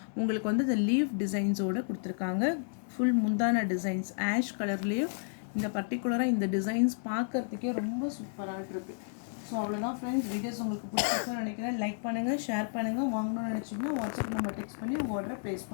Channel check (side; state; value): right; silent; digital silence